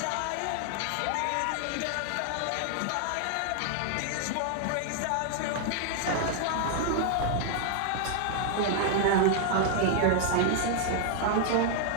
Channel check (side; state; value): both; different; correlation 0.00